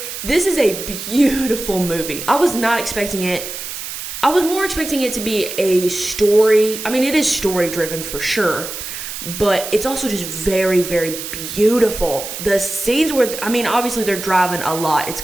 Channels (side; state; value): right; noise; hiss, 8 dB below the sound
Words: this is a beautiful movie. I was not expecting it. I was more expecting it to be a story. I mean, it is story-driven for sure, but it's also just very, very beautiful. The scenes where, obviously they're driving a lot. It's